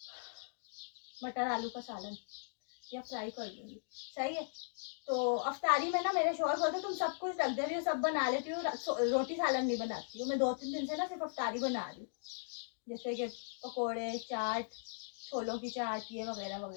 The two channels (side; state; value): right; silent; digital silence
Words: मटर आलू का सालन, या फ्राई कर लूँगी। सही है। तो अफ्तारी में ना मेरे शौहर बोलते तुम सब कुछ रख दे रही हो, सब बना लेती हो, रोटी सालन नहीं बनाती हो। मैं 2-3 दिन से ना सिर्फ अफ्तारी बना रही हूँ, जैसे कि पकोड़े, चाट, छोलों की चाट, ये वगैरह